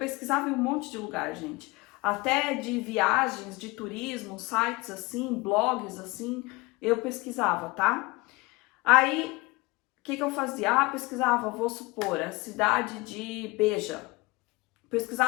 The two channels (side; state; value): right; quieter; 23.6 dB